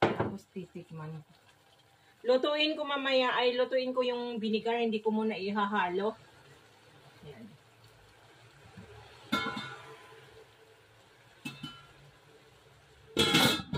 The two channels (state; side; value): identical; both; correlation 1.00